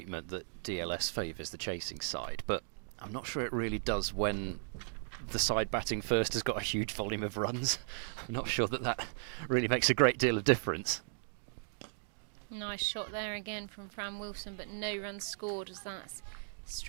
that DLS favours the chasing side, but I'm not sure it really does when the side batting first has got a huge volume of runs. I'm not sure that really makes a great deal of difference. Nice shot there again from Fran Wilson, but no runs scored as that's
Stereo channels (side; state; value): left; silent; digital silence